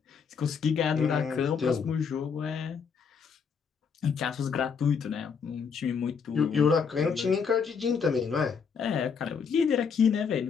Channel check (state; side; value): quieter; right; 6.2 dB